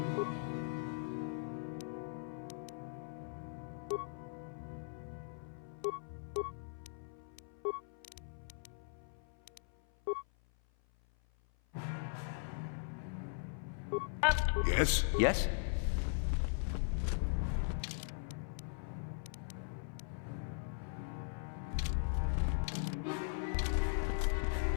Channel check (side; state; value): right; silent; 51 dB below the other